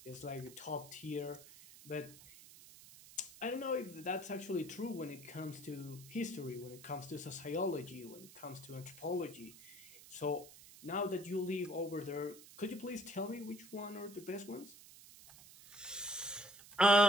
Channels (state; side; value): noise; right; hiss, 18 dB below the sound